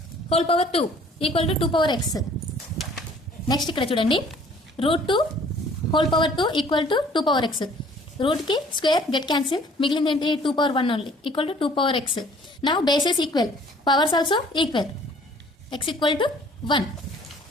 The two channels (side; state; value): both; normal; correlation 0.55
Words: whole power 2 equal to 2/x. Next ఇక్కడ చూడండి √2 whole power 2 equal to 2/x. రూట్కి స్క్వేర్ గెట్ క్యాన్సిల్, మిగిలింది ఏంటి 2/1 only equal to 2/x. నా bases equal, powers also equal, x equal to 1.